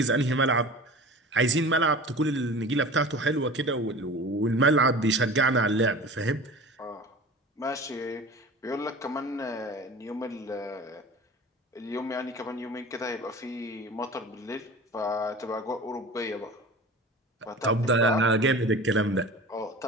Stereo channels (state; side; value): normal; both; correlation 0.37